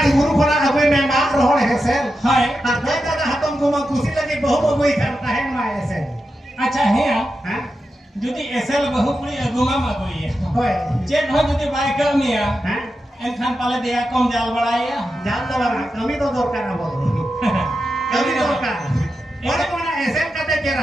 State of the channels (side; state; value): both; normal; correlation 0.89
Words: गुरु खना अबे में मार रोहड़ हेसेल हाय आ दे दादा हातम को मा खुशी लगे बहु बबुई करता है मा ऐसे अच्छा है हां जुदी एसएल बहु पुरी अगुमा मगोई होय चेक हो जुदी बाय कमिया हां एनखान पाले दिया कम जाल बड़ाया जाल दवारा कमी तो दरकार अब कमी दरकार और कोना ऐसे कते